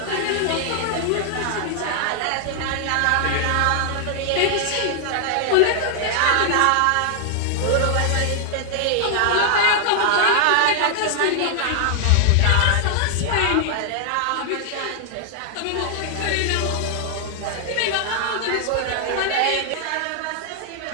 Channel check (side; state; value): both; different; correlation 0.00